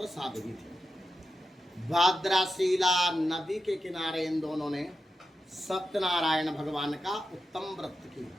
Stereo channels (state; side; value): normal; both; correlation 0.89